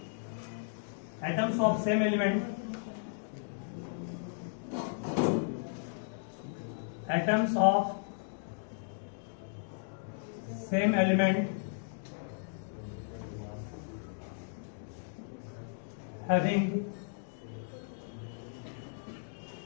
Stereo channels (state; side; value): silent; right; digital silence